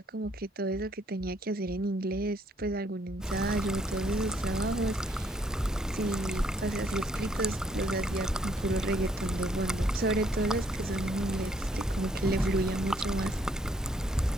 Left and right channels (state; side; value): normal; both; correlation 0.68